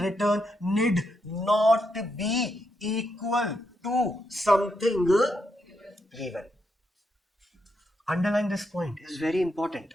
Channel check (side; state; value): both; normal; correlation 0.81